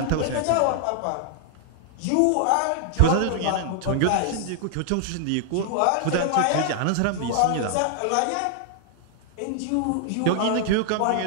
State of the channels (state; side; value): different; both; correlation -0.01